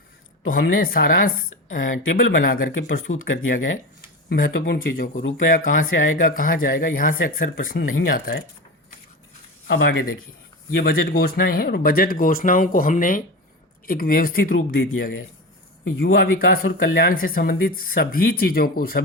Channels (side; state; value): both; normal; correlation 0.25